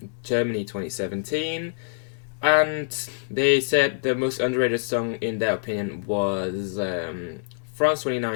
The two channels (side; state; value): right; silent; 61 dB below the other